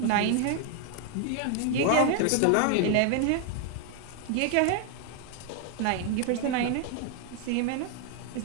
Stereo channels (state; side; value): different; both; correlation 0.00